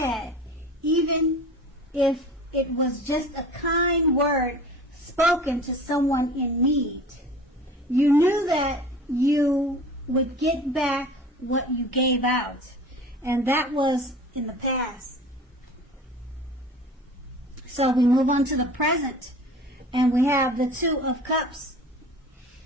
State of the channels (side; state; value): both; normal; correlation 0.41